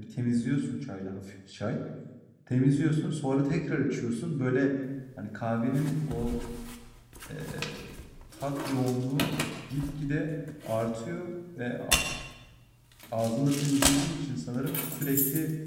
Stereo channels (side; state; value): both; identical; correlation 1.00